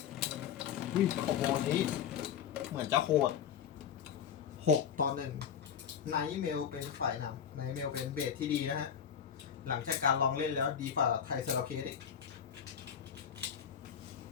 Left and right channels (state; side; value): quieter; right; 8.2 dB